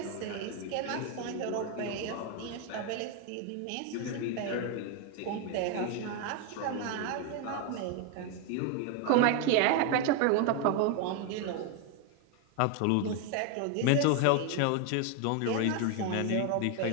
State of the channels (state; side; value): different; both; correlation 0.01